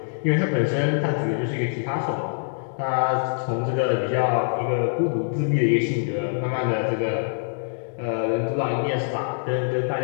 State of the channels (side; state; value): right; silent; digital silence